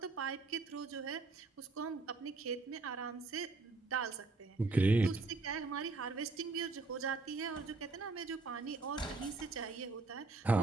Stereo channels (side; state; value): left; quieter; 3.6 dB